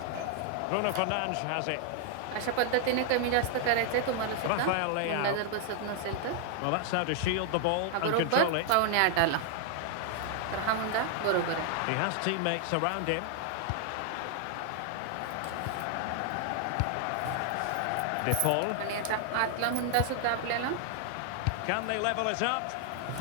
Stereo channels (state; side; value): different; both; correlation 0.00